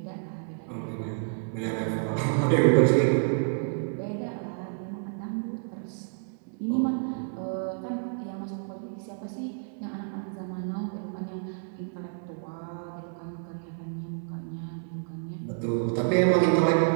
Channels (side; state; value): left; silent; 58 dB below the other